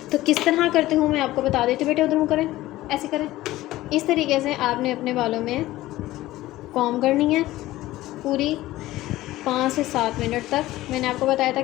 तो किस तरह करती हूँ मैं आपको बता देती हूँ। बेटे उधर मुँह करें, ऐसे करें। इस तरीके से आपने अपने बालों में कॉम्ब करनी है पूरी 5 से 7 मिनट तक। मैंने आपको बताया था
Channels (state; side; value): quieter; right; 16.5 dB